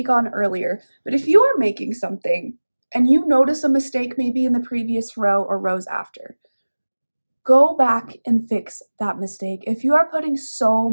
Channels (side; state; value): both; inverted; correlation -1.00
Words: on earlier, but if you are making something and you notice a mistake maybe in the previous row or rows after, go back and fix that mistake. If you are putting so